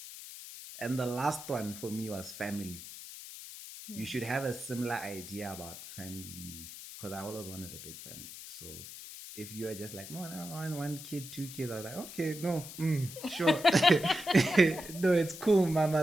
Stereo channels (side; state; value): left; noise; hiss, 12 dB below the sound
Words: And the last one for me was family. You should have a similar idea about family, because I always wanted a big family. So if you are just like, no, I want 1 kid, 2 kids, I was like, okay, no, sure. No, it's cool,